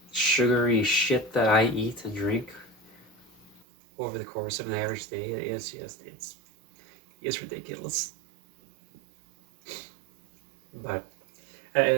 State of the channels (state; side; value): drops out; left; at 3.6 s